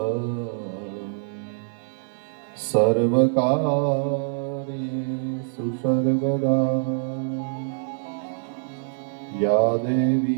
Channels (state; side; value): silent; left; 62 dB below the other